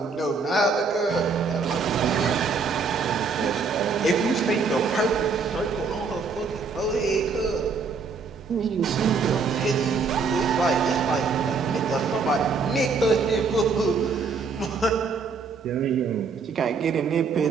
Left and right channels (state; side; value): quieter; left; 4.8 dB